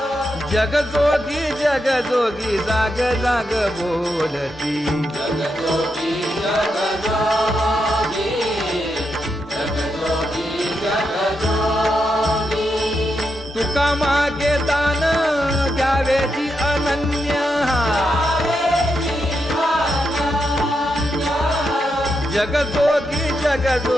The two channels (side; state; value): both; normal; correlation 0.84